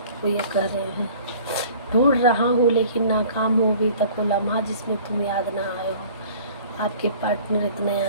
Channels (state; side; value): inverted; both; correlation -0.49